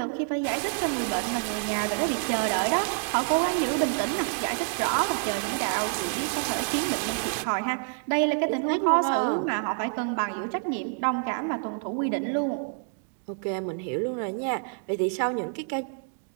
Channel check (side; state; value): left; silent; 60 dB below the other